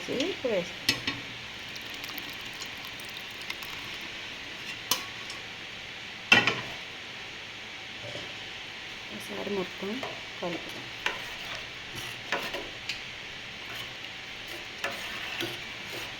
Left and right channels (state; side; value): identical; both; correlation 1.00